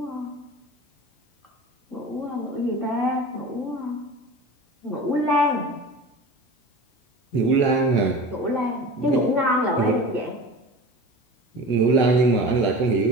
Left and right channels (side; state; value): right; late; 17 ms